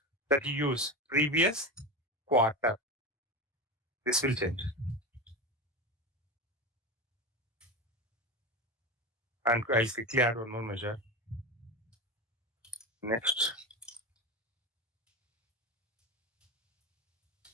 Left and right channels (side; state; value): both; normal; correlation 0.21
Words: that you use, previous quarter, this will change. And I'll quickly add one more measure. Next.